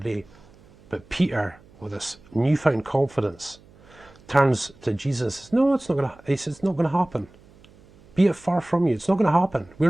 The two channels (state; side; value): noise; right; hum, 26 dB below the sound